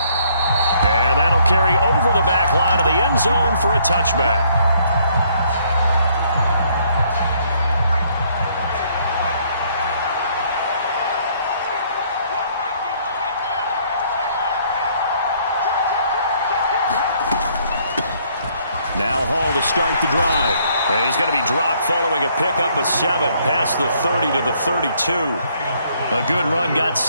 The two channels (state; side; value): inverted; both; correlation -0.66